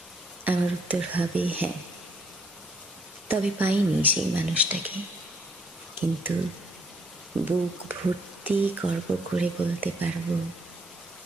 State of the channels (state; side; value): normal; both; correlation 0.68